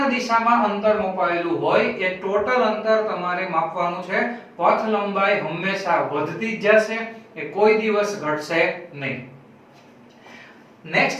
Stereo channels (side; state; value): both; identical; correlation 1.00